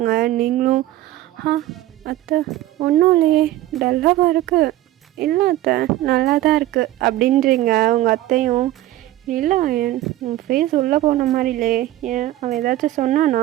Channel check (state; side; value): quieter; left; 15.0 dB